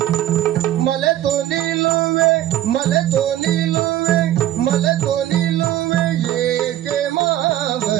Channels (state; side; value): quieter; left; 13.0 dB